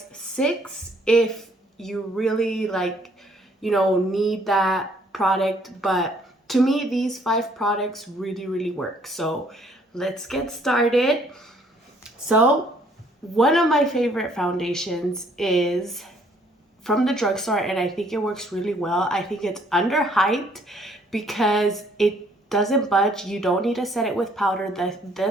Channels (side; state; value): both; normal; correlation 0.63